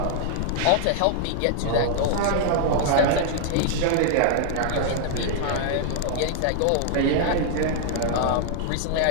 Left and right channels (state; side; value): different; both; correlation -0.01